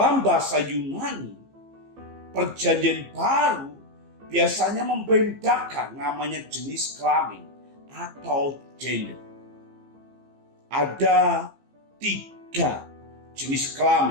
bahasa Yunani perjanjian baru biasanya membedakan namanya jenis kelamin atau gender. Ada 3 jenis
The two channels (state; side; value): late; left; 15 ms